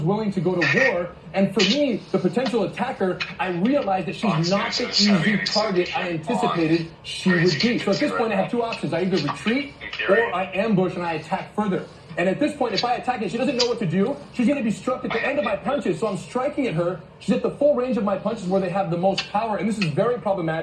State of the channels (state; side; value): identical; both; correlation 1.00